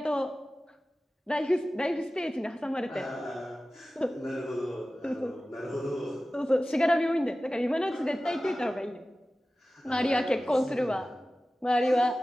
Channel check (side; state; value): both; normal; correlation 0.96